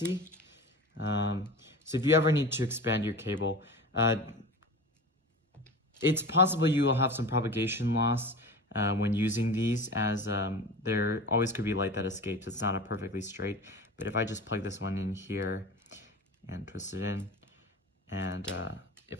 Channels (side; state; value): both; normal; correlation 0.33